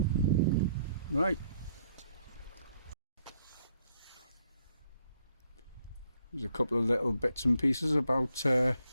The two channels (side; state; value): both; inverted; correlation -0.71